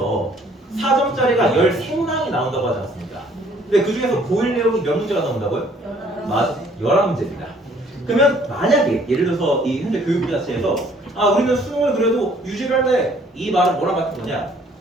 4점짜리가 13문항이 나온다고 하지 않았습니까? 근데 그 중에서 고1 내용이 몇 문제가 나온다고요? 맞아, 11문제입니다. 그러면 만약에 예를 들어서 이 현재 교육부 자체에서 우리는 수능을 그래도 유지를 할래, 이 말은 뭐랑 같은 거냐?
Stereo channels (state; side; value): normal; both; correlation 0.60